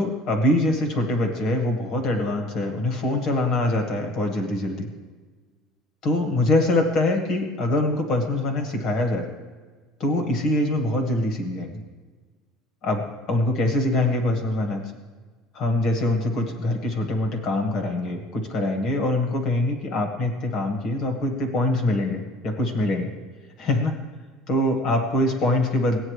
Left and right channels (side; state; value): both; normal; correlation 0.50